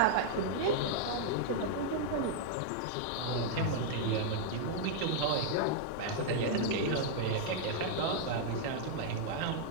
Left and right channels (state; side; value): different; both; correlation -0.01